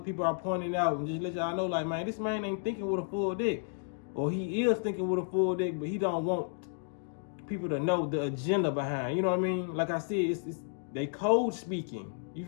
are pointing out, and just let y'all know, like, man, this man ain't thinking with a full dick. Or he is thinking with a full dick, but he don't want people to know the agenda behind. You know what I mean? Like I said, it's they code speaking. You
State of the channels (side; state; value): right; silent; digital silence